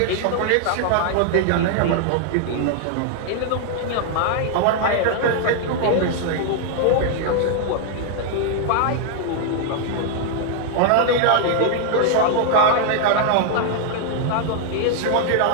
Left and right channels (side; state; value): both; different; correlation 0.00